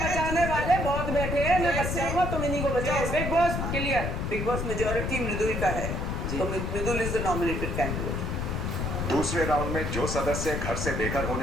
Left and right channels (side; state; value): left; noise; rumble, 2 dB below the sound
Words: वाले बहुत बैठे हैं, मैं बचाऊंगा, तुम इन्हीं को बचाओ। Big boss clear, big boss majority Mridul का है, तो Mridul is the nominated candidate. दूसरे राउंड में जो सदस्य घर से बेघर